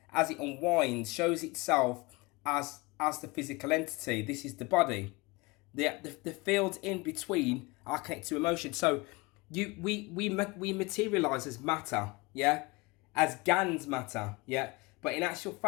as it unwinds, shows itself as the physical entity. This is the body. The fields in between are connected to emotion. So we materialize as matter, yeah, as GANs matter, yeah. But in actual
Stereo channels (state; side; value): quieter; right; 24.7 dB